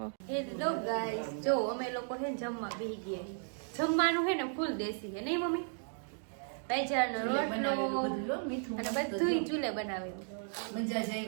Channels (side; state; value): left; silent; 54 dB below the other